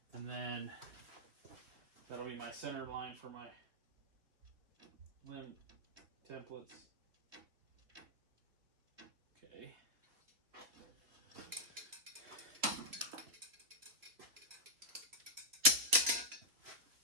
And then that'll be my center line for my limb templates. Okay.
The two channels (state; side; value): late; left; 3.3 ms